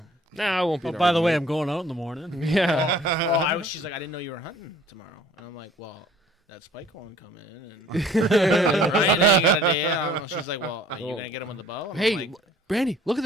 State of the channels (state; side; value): normal; both; correlation 0.53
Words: Nah, I won't be. Oh, by the way, I'm going out in the morning. Yeah. She's like, I didn't know you were hunting tomorrow, and I'm like, well, that spike won't come in, and Ryan ain't got a deer. She's like, well, are you going to get him with the bow? And hey, like, Brandy, look at